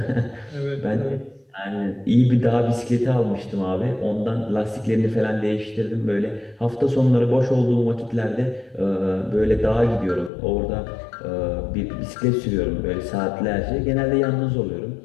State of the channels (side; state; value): right; drops out; at 10.3 s